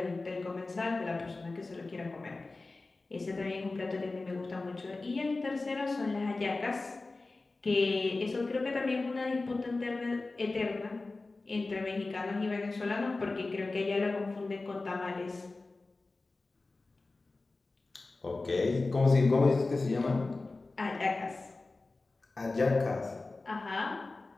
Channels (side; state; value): right; quieter; 3.4 dB